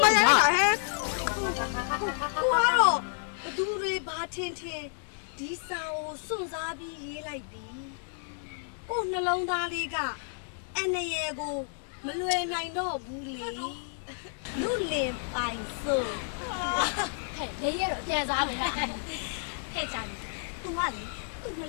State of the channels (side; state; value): right; silent; digital silence